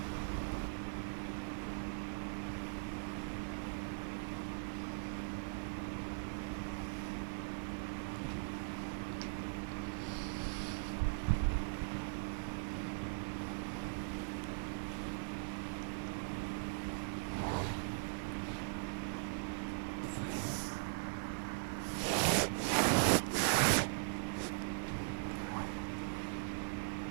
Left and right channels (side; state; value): left; silent; 51 dB below the other